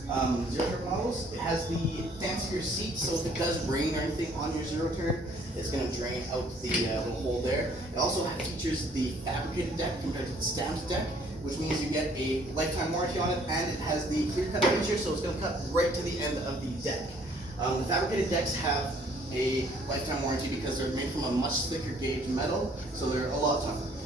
zero-turn models. It has the fancier seat, so if it does rain or anything on your zero-turn, it's going to drain out the little hole there. It also features the fabricated deck compared to the stamped deck, which means you get a lifetime warranty on it, and it has the clear cut feature, so it's going to cut right to the end of the deck. The fabricated decks have a lifetime warranty because they're made from a much thicker gauge metal, so they're a lot tougher.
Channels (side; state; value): both; normal; correlation 0.60